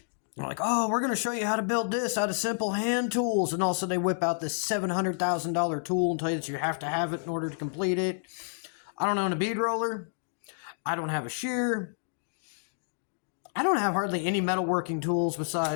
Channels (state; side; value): silent; right; digital silence